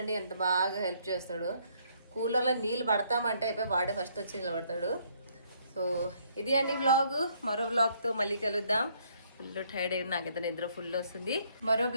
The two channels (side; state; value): both; inverted; correlation -0.67